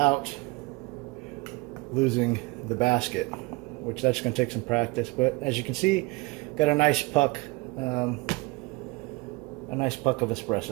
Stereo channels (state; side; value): quieter; left; 24.8 dB